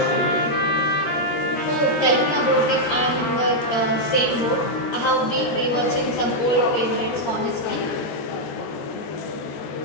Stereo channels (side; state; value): right; late; 13 ms